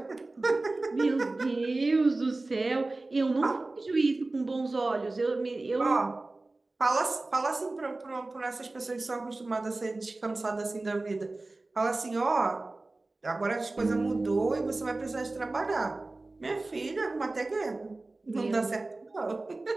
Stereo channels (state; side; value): quieter; left; 3.1 dB